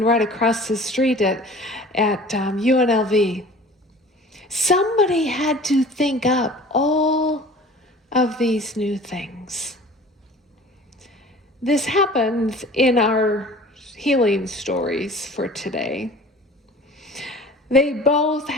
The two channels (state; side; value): normal; both; correlation 0.44